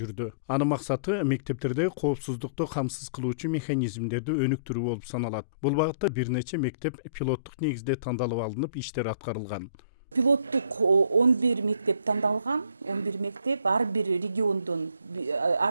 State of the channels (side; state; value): both; inverted; correlation -0.54